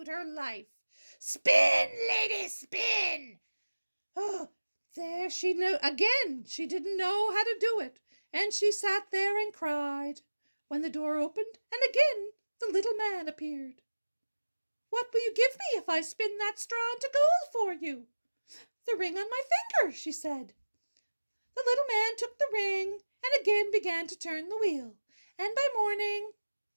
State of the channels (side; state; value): both; inverted; correlation -1.00